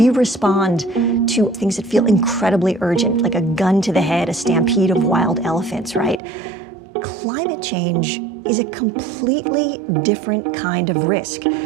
respond to things that feel incredibly urgent, like a gun to the head, a stampede of wild elephants, right? Climate change is a completely different kind of risk.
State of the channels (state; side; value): drops out; left; at 6.2 s